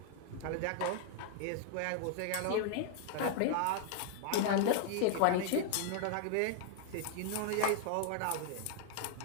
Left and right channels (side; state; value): both; different; correlation 0.00